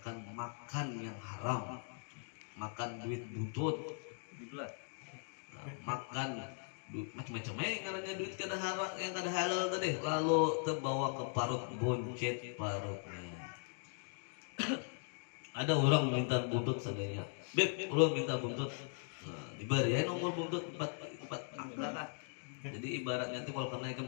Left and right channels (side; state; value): right; silent; 52 dB below the other